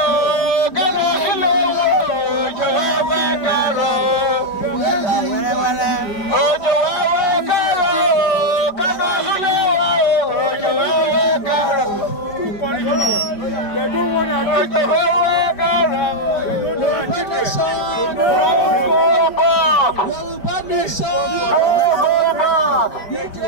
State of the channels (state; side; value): late; right; 5.0 ms